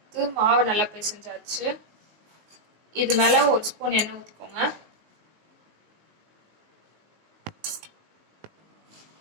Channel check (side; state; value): left; late; 19 ms